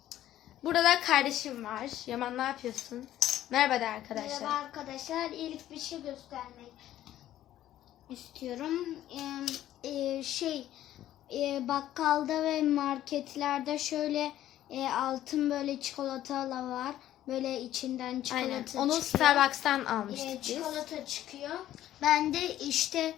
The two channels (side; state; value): right; quieter; 12.9 dB